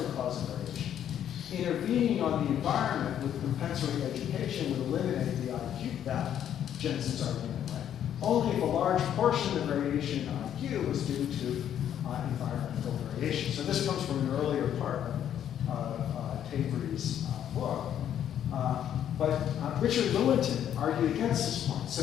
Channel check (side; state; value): right; quieter; 10.0 dB